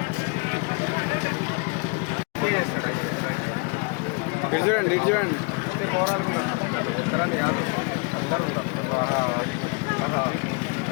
ఇటు చూడండి, ఇటు చూడండి. ఒక్కరని కాదు, అందరూ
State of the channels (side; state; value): right; quieter; 32.4 dB